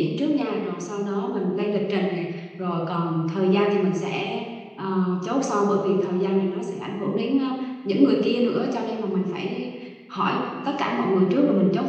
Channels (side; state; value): both; identical; correlation 1.00